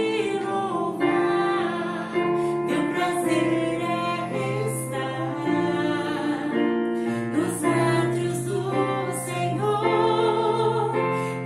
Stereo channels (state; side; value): identical; both; correlation 1.00